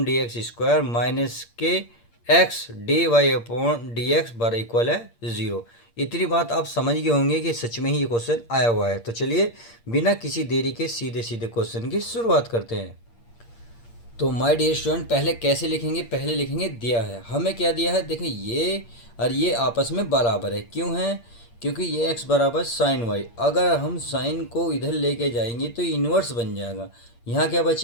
D X square minus के x dy upon D x बराबर इक्वल है 0। इतनी बात आप समझ गए होंगे कि सच में ही ये क्वेश्चन आया हुआ है। तो चलिए बिना किसी देरी के सीधे सीधे क्वेश्चन की शुरुआत करते हैं। तो माय डियर स्टूडेंट, पहले कैसे लिखेंगे, पहले लिखेंगे दिया है। हमें क्या दिया है, देखिए ये और ये आपस में बराबर है। क्यों है? क्योंकि ये x बराबर साइन वाई। अगर हम साइन को इधर लेके जाएंगे तो इन्वर्स बन जाएगा। यहाँ क्या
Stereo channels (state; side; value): late; right; 8.6 ms